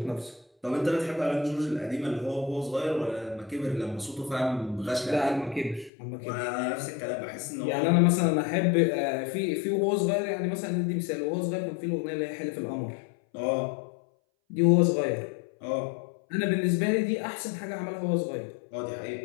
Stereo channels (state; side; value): drops out; right; at 5.9 s